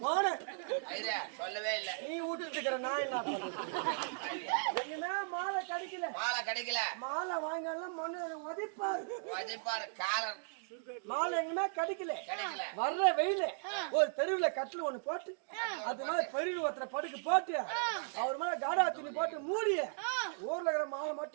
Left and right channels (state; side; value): silent; left; digital silence